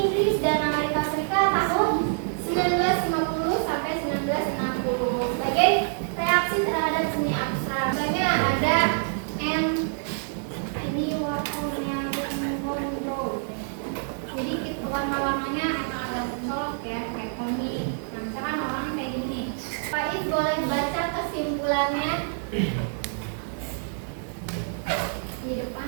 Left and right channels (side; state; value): left; silent; digital silence